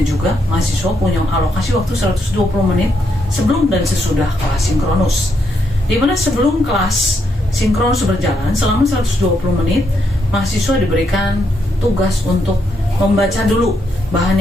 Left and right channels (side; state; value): both; normal; correlation 0.78